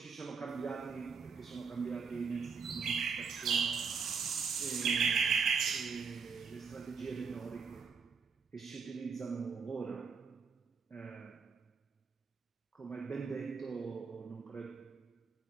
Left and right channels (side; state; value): left; quieter; 5.6 dB